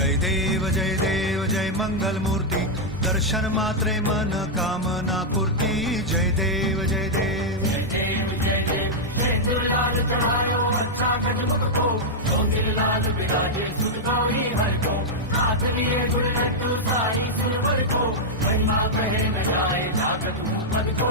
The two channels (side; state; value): both; normal; correlation -0.04